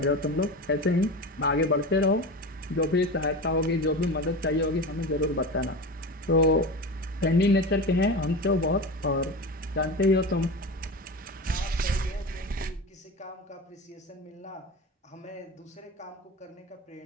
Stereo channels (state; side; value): normal; both; correlation 0.27